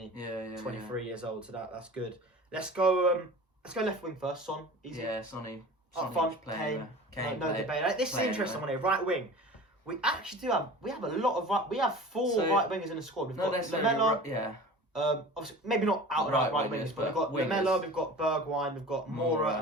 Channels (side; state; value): both; normal; correlation 0.38